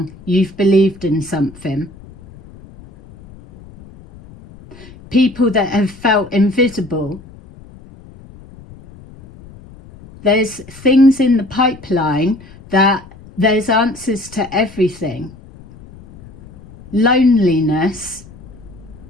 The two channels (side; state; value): left; noise; rumble, 21 dB below the sound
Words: you've believed in something. People that have felt invisible. There's things in the pipeline that there's answers to everything. Loneliness